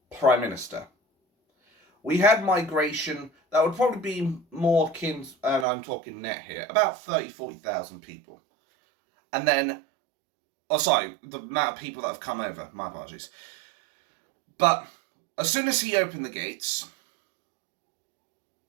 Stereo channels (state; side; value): drops out; left; at 5.7 s